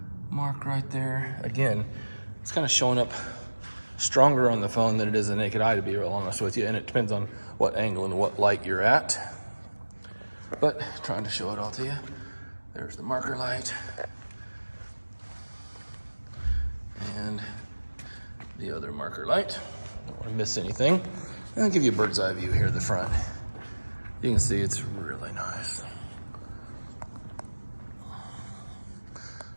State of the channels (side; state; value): both; inverted; correlation -1.00